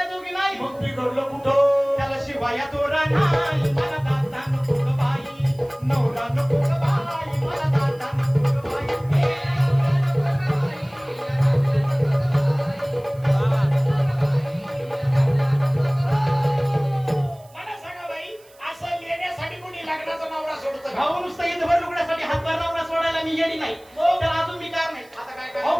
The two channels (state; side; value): noise; right; hiss, 28 dB below the sound